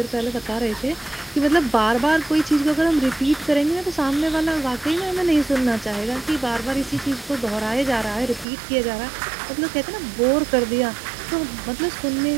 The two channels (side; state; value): left; drops out; at 8.5 s